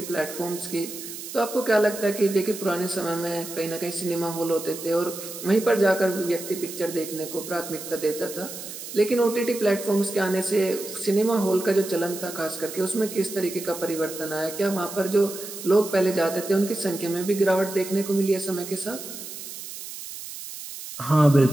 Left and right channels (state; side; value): noise; right; hiss, 11 dB below the sound